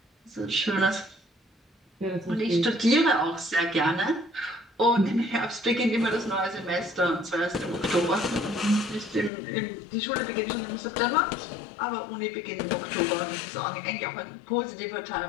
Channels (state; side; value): drops out; right; at 9.3 s